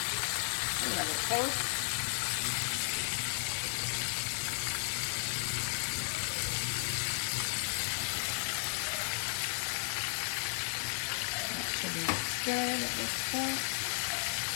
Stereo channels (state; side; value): silent; right; 55 dB below the other